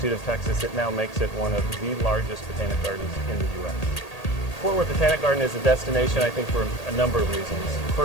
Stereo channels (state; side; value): late; right; 1.8 ms